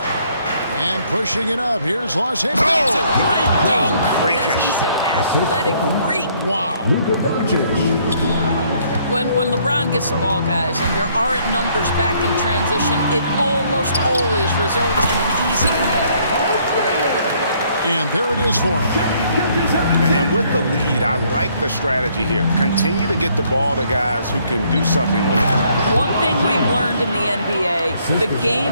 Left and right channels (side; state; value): both; inverted; correlation -0.66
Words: And pushing it up, here's Lars Hickey. That's a great dunk. freakish. He's an athletic freak. Wow. Luka Doncic. When LeBron gets the ball, guys, and there aren't numbers back in transition, it almost always results in an easy finish. And there it is for him. And with the lead, I like the strategy here. Continue to get the ball to guys who can do something with it. One thing we've learned in the NBA, the